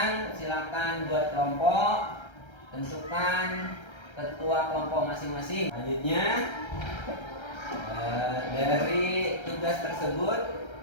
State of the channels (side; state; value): right; late; 1.3 ms